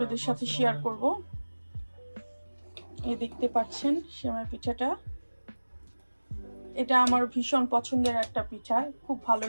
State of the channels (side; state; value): both; inverted; correlation -1.00